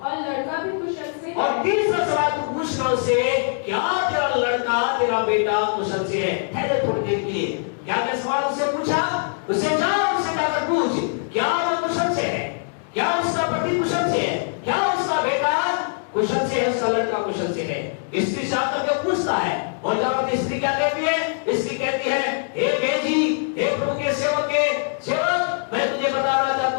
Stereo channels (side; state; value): right; silent; digital silence